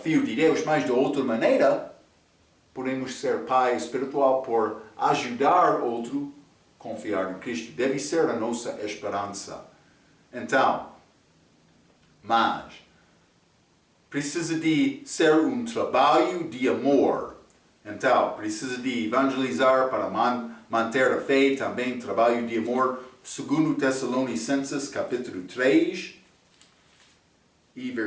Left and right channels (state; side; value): identical; both; correlation 1.00